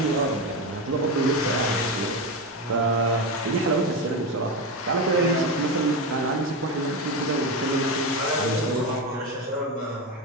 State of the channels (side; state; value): both; normal; correlation 0.15